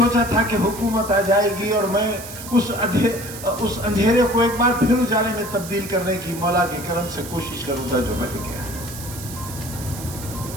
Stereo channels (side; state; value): right; noise; hiss, 12 dB below the sound